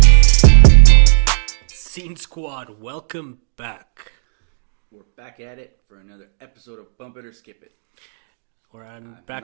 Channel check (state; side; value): silent; left; digital silence